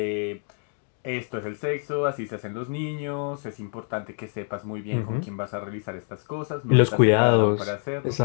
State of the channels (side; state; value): right; silent; 56 dB below the other